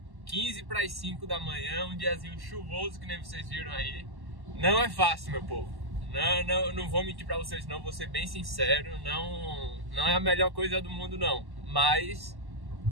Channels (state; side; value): late; left; 1.1 ms